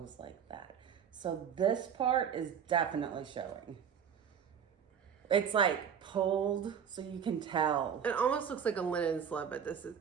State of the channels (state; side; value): quieter; left; 7.9 dB